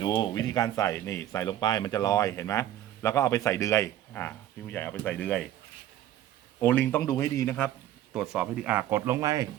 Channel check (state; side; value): quieter; left; 12.4 dB